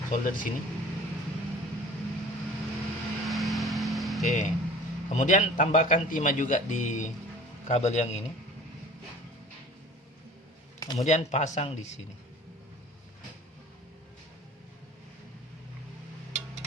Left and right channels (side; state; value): both; normal; correlation 0.44